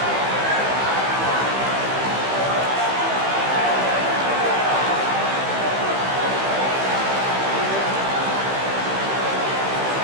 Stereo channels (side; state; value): left; late; 15 ms